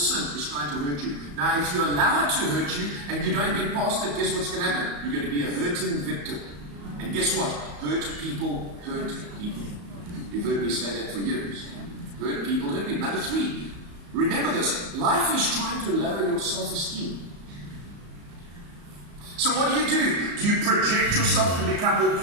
is trying to hurt you. Now, if you allow it to hurt you and you don't get past it, guess what's going to happen? You're going to be a hurting victim. And guess what? Hurt people hurt people. You've heard me say that for years. Hurt people hurt people. Number 3, remember this. Life is trying to lower your self-esteem. So what do? Do you project yourself and become all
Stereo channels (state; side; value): late; left; 34 ms